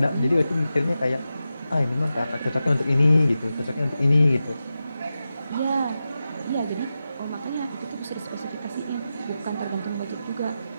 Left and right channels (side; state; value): both; inverted; correlation -0.92